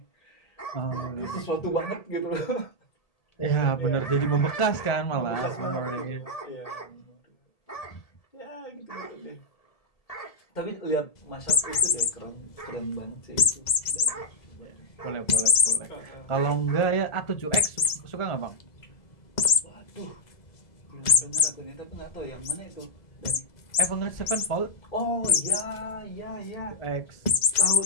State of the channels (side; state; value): right; late; 2.0 ms